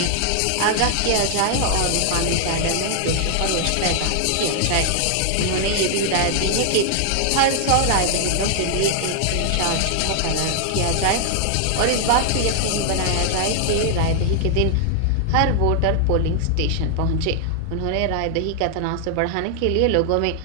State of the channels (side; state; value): both; different; correlation 0.00